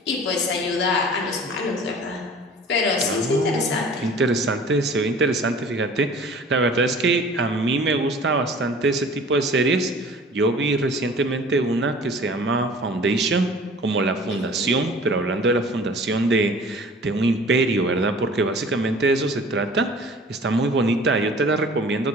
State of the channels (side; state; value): both; normal; correlation 0.46